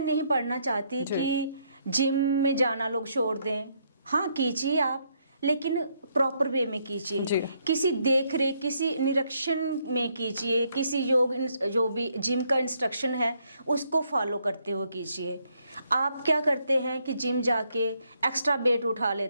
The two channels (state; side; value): inverted; both; correlation -0.73